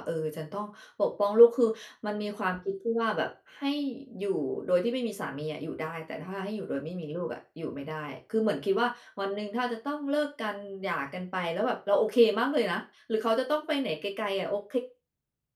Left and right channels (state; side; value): identical; both; correlation 1.00